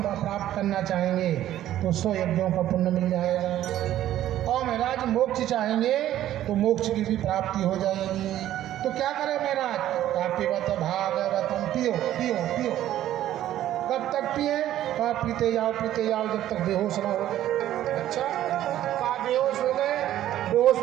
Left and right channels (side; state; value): left; quieter; 12.7 dB